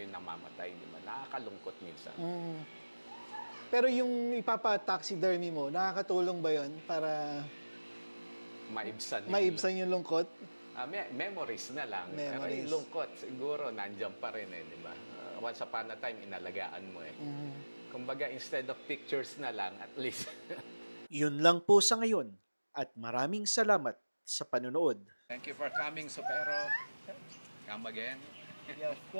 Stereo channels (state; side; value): inverted; both; correlation -1.00